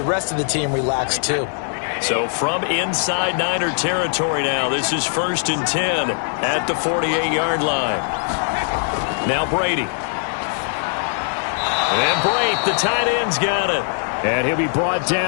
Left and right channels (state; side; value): silent; right; 65 dB below the other